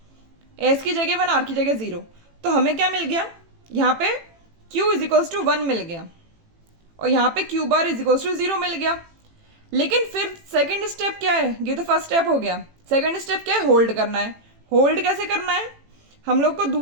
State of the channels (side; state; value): left; late; 18 ms